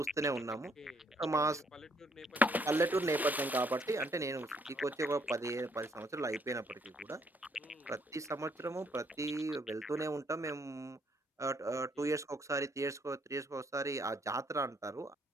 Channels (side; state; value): both; normal; correlation 0.68